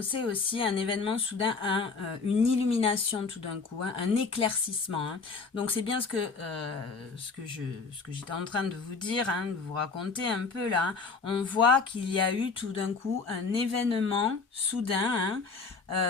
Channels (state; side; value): quieter; right; 4.5 dB